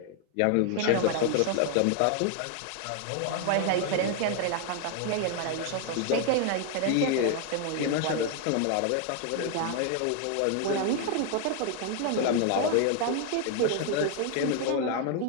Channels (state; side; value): different; both; correlation 0.00